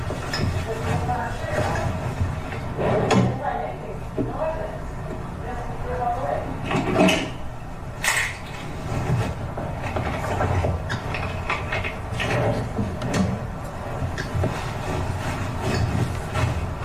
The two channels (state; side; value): identical; both; correlation 1.00